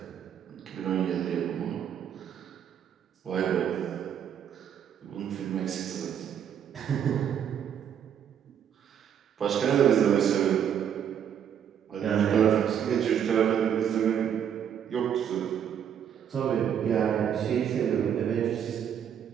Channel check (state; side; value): quieter; left; 8.8 dB